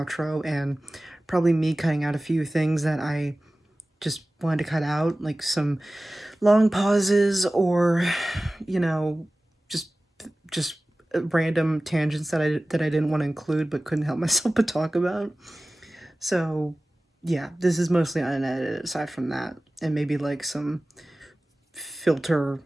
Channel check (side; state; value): both; normal; correlation 0.97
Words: and probably me cutting out a few things that I just wanted to cut out, like some long pauses or, you know, just just random tangents that I didn't want to include but couldn't help myself but talk about. So, yeah, this is mostly unedited aside from that, and maybe like some filter